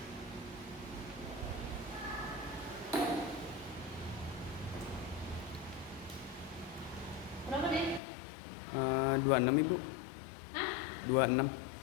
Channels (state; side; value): drops out; right; at 8.0 s